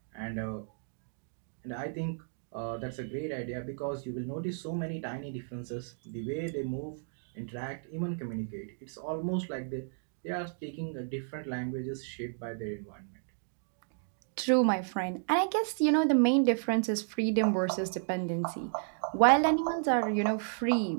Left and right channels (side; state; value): left; silent; digital silence